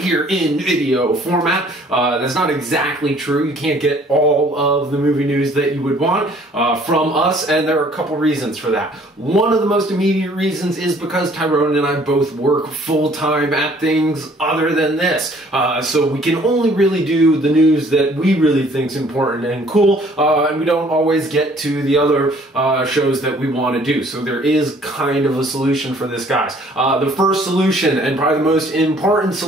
in video format. That's not exactly true. You can't get all of the movie news that you would want from us, and there are a couple reasons for that. One of the most immediate reasons is because Tyrone and I both work full-time at things other than this. So we can only really do the news that we really think is important and cool, and we don't always get to the other shows that we want to do. So there is kind of a solution for this, guys. The first solution, and probably the most important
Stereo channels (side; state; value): both; normal; correlation 0.57